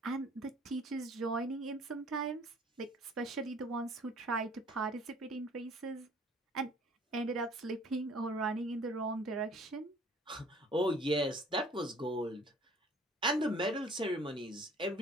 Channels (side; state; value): both; normal; correlation 0.54